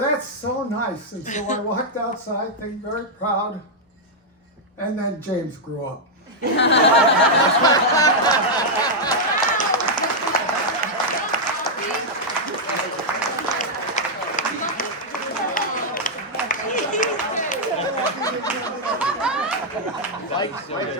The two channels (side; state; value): both; normal; correlation -0.04